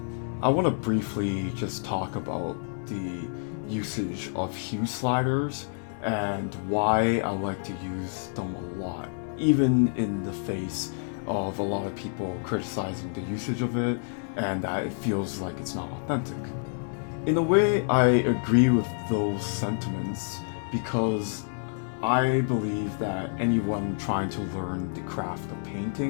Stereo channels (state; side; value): silent; right; digital silence